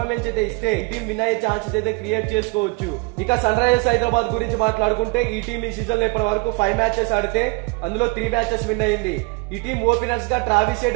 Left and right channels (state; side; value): quieter; left; 26.9 dB